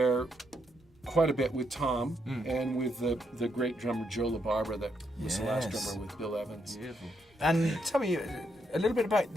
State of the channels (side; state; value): both; normal; correlation 0.78